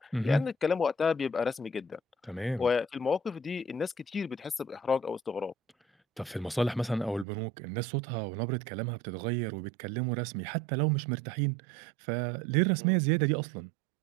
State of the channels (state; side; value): drops out; left; at 7.2 s